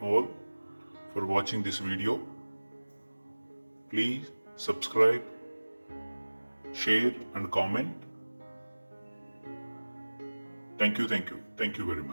for watching this video. Please subscribe, share and comment. Thank you very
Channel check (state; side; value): inverted; both; correlation -1.00